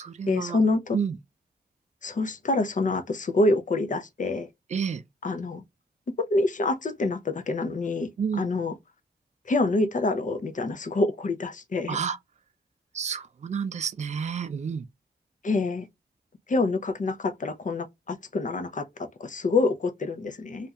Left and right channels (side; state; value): both; normal; correlation 0.61